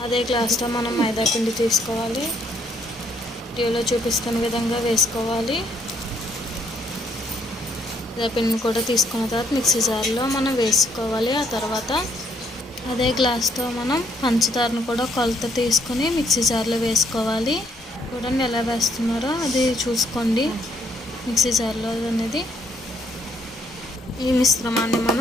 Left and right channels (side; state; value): both; normal; correlation 0.68